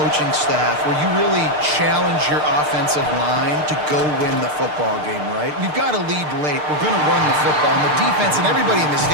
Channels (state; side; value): late; left; 6.6 ms